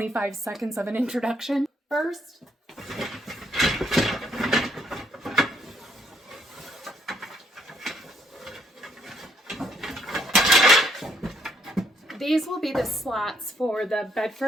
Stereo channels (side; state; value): both; normal; correlation 0.71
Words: seconds of an introduction. First, these will be the slats for the bed